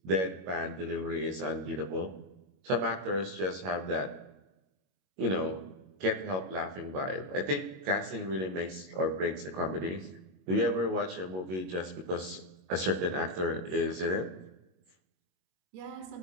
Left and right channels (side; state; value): left; late; 22 ms